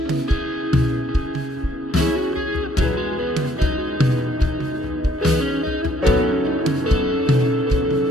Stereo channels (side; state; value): both; normal; correlation 0.65